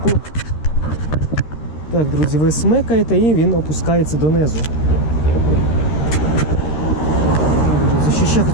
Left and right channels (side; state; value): right; late; 13 ms